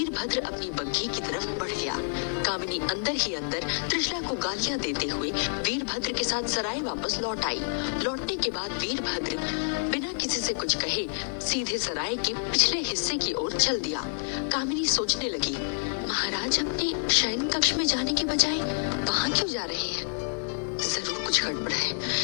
अपनी बग्घी की तरफ बढ़ गया। कामिनी अंदर ही अंदर त्रिशला को गालियां देते हुए वीरभद्र के साथ सराय वापस लौट आई। लौटने के बाद वीरभद्र बिना किसी से कुछ कहे सीधे सराय के पिछले हिस्से की ओर चल दिया। कामिनी सोचने लगी, महाराज अपने शयन कक्ष में जाने के बजाय वहां क्यों जा रहे हैं? जरूर कुछ गड़बड़ है।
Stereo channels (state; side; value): silent; right; digital silence